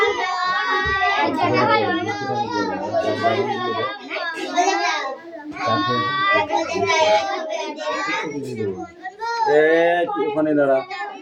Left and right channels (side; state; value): both; identical; correlation 1.00